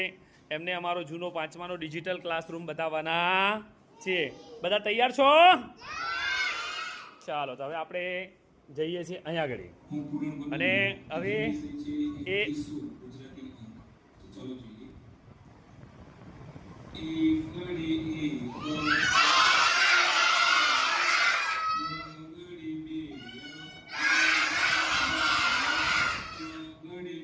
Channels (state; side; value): identical; both; correlation 1.00